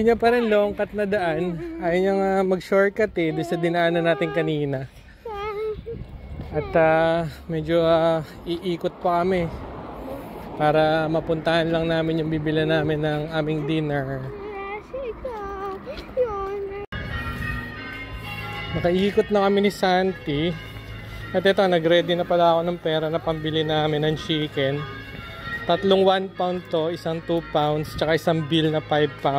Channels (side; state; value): both; identical; correlation 1.00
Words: niya pa rin long cut na daan. Ayaw niya nga mag-shortcut doon sa dinaanan natin kanina. At medyo iikot pa kami para mapuntahan lang namin yung bibila namin ng aming dinner. Nakaikot na kami ni Santi. At ito, nag-ready na pala ako ng pera na pambili namin ng chicken. Tatlong 1 pound to, isang 2 pounds, tsaka isang bill na 5